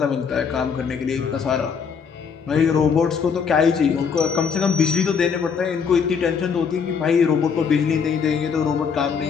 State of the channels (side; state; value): right; quieter; 6.3 dB